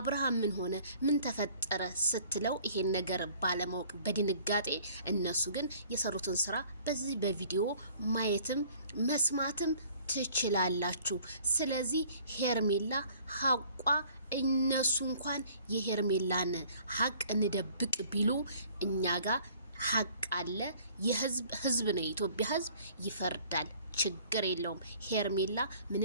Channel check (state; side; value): inverted; both; correlation -0.54